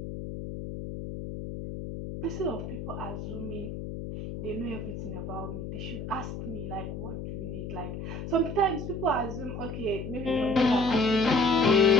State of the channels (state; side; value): noise; left; hum, 7 dB below the sound